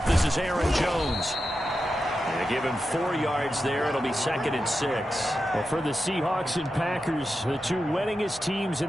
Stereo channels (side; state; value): both; normal; correlation 0.90